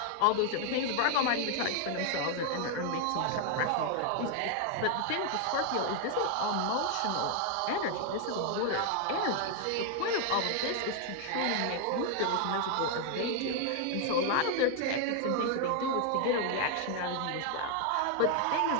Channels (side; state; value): both; different; correlation 0.00